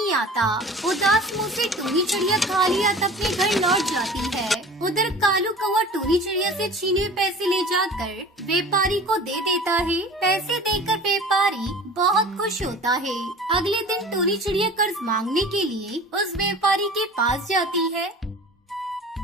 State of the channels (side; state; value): both; normal; correlation 0.41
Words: आता। उदास मुंह से टूनी चिड़िया खाली हाथ अपने घर लौट जाती है। उधर कालू कौवा टूनी चिड़िया से छीने हुए पैसे ले जाकर व्यापारी को दे देता है। पैसे देकर व्यापारी बहुत खुश होता है। अगले दिन टूनी चिड़िया कर्ज मांगने के लिए उस व्यापारी के पास जाती है।